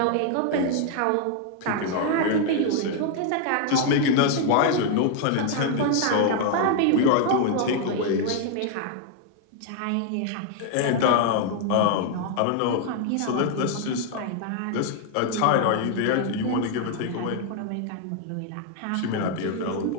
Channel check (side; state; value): both; different; correlation 0.00